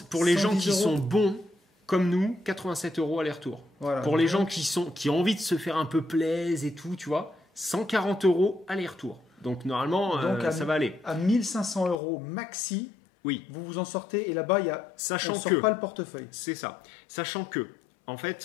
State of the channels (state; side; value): drops out; right; at 12.0 s